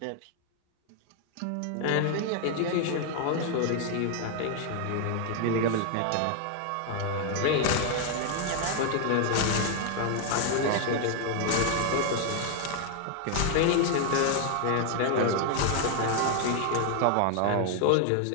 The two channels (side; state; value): both; different; correlation 0.00